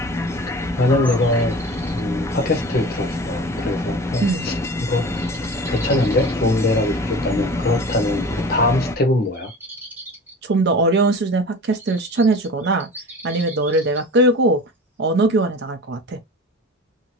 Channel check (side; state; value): both; normal; correlation 0.37